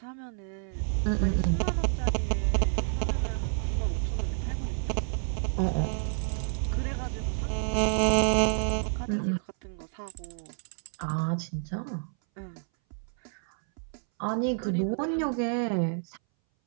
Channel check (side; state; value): left; silent; 58 dB below the other